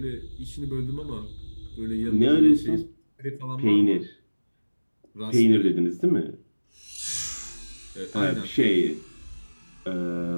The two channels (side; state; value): both; inverted; correlation -1.00